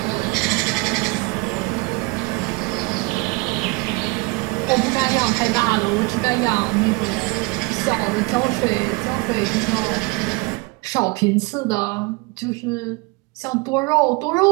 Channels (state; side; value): quieter; left; 26.5 dB